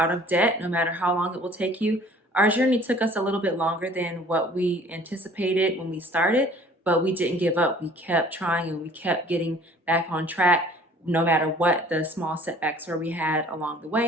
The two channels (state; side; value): normal; both; correlation 0.51